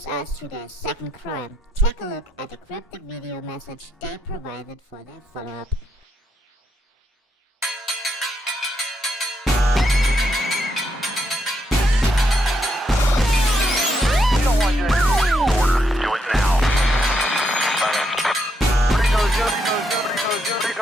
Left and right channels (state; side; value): normal; both; correlation 0.78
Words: us to their second crime. Take a look at the cryptic video message they provided for their follow-up.